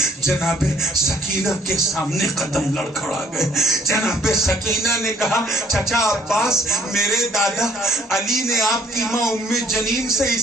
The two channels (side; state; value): both; normal; correlation 0.60